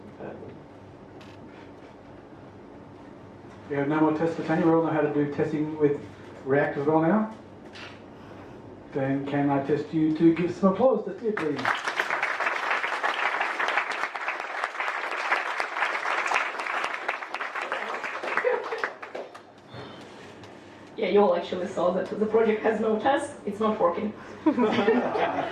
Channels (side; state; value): both; identical; correlation 1.00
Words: compare them. We have no more tests for Tanya. We all know how to do testing with React as well now. Then can I test you to give some applause to Tia, please? Yeah, you all actually saw that the project has no test. It's not working.